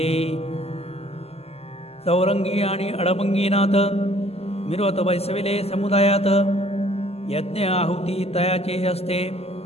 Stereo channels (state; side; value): late; right; 0.29 ms